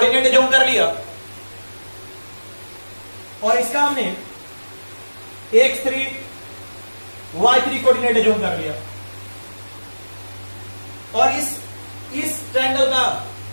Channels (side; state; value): both; inverted; correlation -1.00